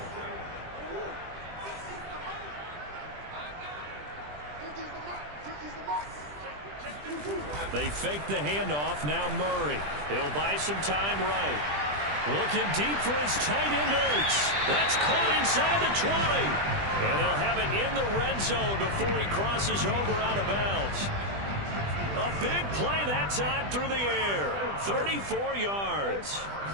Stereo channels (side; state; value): left; late; 20 ms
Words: They fake the handoff. Now Murray. He'll buy some time right. Looking deep for his tight end, Ertz. That's caught inside the 20. And they'll have it in the red zone before he crosses over out of bounds. A big play that time through the air. 34 yards.